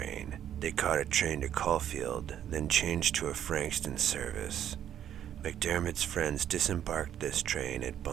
They caught a train to Caulfield, then changed to a Frankston service. MacDiarmid's friends disembarked this train at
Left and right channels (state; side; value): quieter; left; 10.3 dB